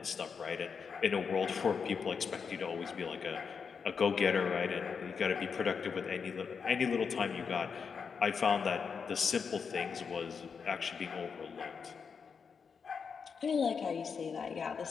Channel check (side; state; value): right; quieter; 6.0 dB